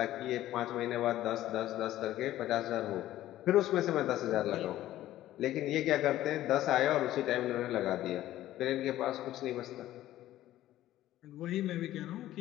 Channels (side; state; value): right; quieter; 14.1 dB